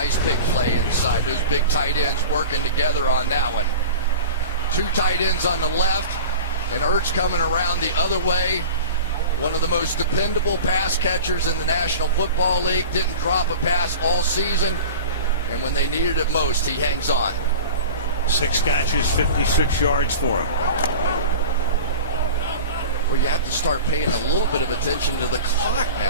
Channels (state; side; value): inverted; both; correlation -0.35